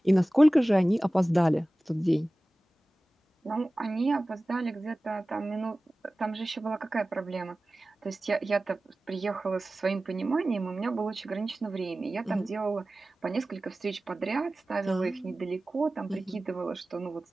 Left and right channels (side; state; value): both; normal; correlation 0.97